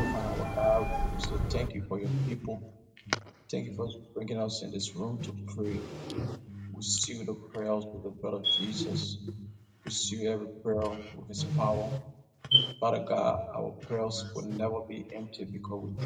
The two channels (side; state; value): both; identical; correlation 1.00